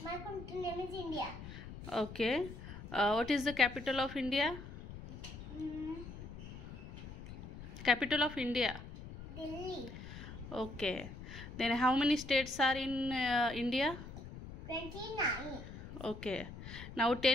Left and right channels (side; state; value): left; noise; rumble, 12 dB below the sound